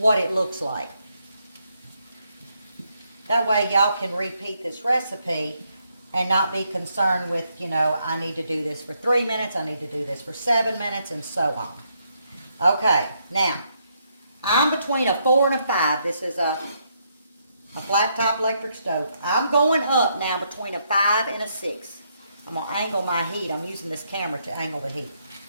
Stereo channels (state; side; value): inverted; both; correlation -0.76